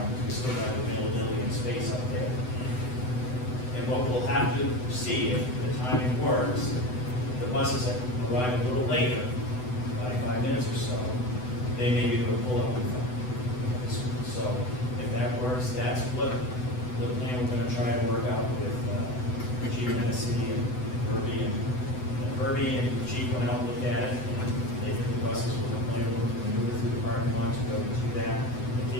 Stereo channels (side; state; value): right; late; 8.0 ms